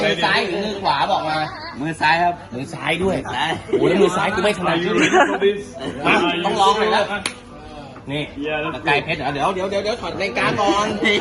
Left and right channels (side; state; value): both; identical; correlation 1.00